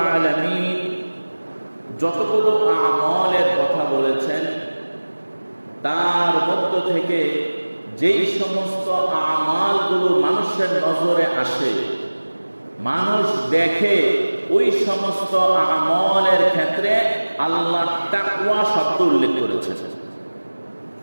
আলামিন যতগুলো আমলের কথা বলেছেন তার মধ্য থেকে যেই সমস্ত আমালগুলো মানুষের নজরে আসে, মানুষ দেখে, ওই সমস্ত আমলের ক্ষেত্রে আল্লাহ তাকওয়া শব্দ উল্লেখ করেছেন।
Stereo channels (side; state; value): both; inverted; correlation -1.00